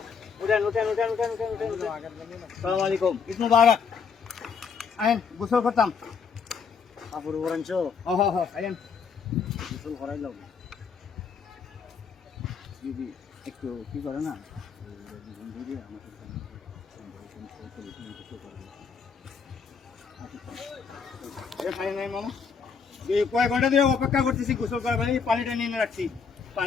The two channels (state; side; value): quieter; right; 6.0 dB